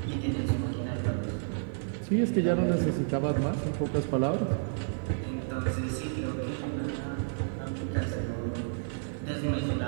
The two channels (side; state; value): left; silent; digital silence